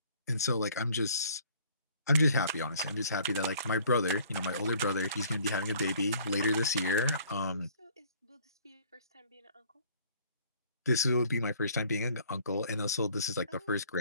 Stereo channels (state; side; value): inverted; both; correlation -0.56